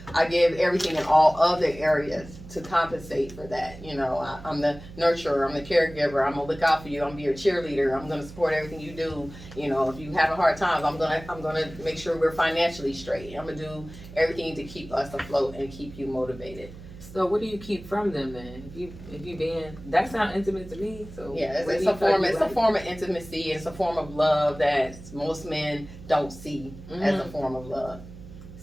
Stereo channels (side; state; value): right; noise; hum, 16 dB below the sound